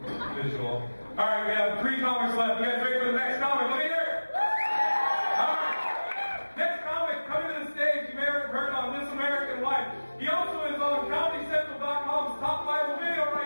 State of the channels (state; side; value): inverted; both; correlation -1.00